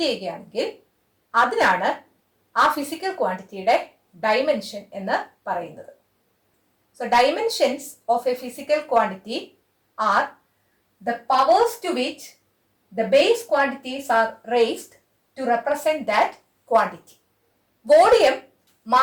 ചെയ്യുകയാണെങ്കിൽ അതിനാണ് ആ ഫിസിക്കൽ ക്വാണ്ടിറ്റിയുടെ ഡൈമെൻഷൻ എന്ന് പറയുന്നത്. So dimensions of a physical quantity are the powers to which the base quantities are raised to represent that quantity. Volume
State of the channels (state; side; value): identical; both; correlation 1.00